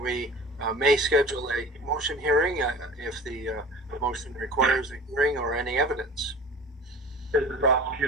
we may schedule a motion hearing if the motion requires a hearing or any evidence. Is the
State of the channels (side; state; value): both; normal; correlation 0.40